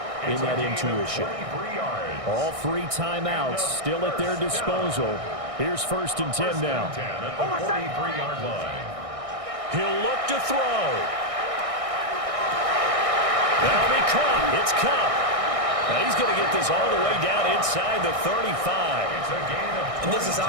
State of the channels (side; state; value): left; late; 1.6 ms